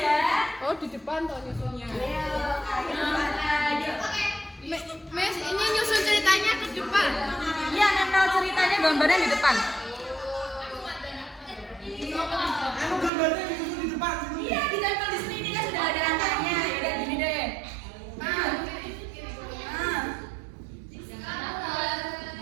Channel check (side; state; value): left; drops out; at 13.1 s